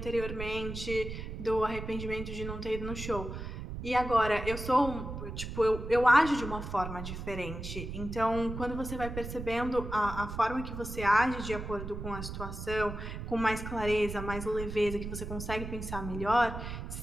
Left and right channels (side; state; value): right; noise; rumble, 7 dB below the sound